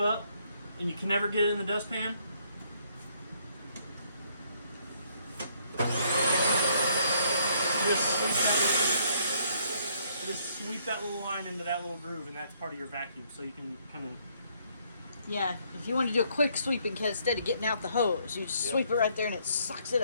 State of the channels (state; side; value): inverted; both; correlation -0.68